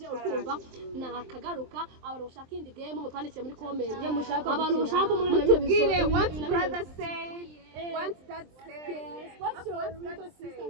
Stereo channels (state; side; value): late; left; 23 ms